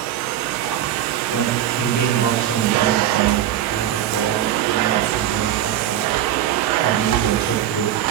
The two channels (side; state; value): left; quieter; 11.4 dB